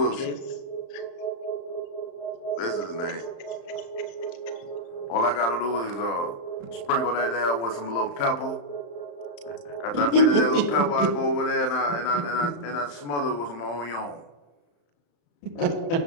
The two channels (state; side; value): late; right; 35 ms